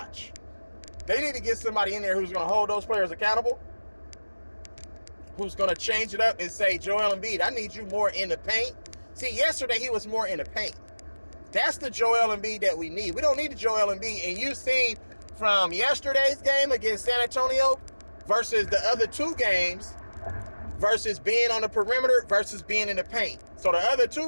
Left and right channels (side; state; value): both; inverted; correlation -1.00